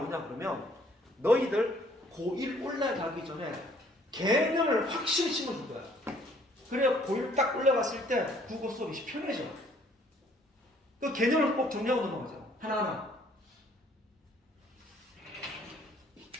그러면 너희들 고1 올라가기 전에 개념을 확실히 심어줄 거야. 그래야 고1 딱 올라갔을 때 국어 수업이 편해져. 그 개념을 꼭 정리하고 넘어가자. 하나하나.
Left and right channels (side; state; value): both; normal; correlation 0.60